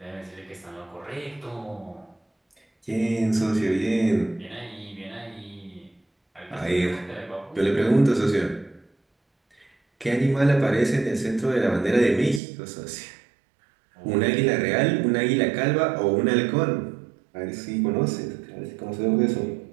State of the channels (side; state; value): left; drops out; at 12.4 s